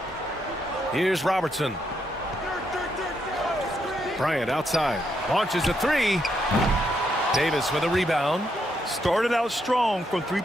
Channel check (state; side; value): normal; both; correlation 0.78